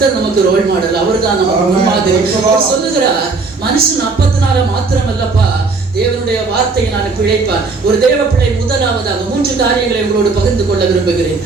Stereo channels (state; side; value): quieter; left; 4.1 dB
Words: நமக்கு ரோல் மாடல், அவர் தான் நமக்கு மாதிரி. சொல்லுகிறார், மனுஷன் அப்பத்தினால மாத்திரம் அல்லப்பா, தேவனுடைய வார்த்தையினால பிழைப்பார். ஒரு தேவ பிள்ளை முதலாவதாக 3 காரியங்களை உங்களோடு பகிர்ந்து கொள்ள விரும்புகிறேன்.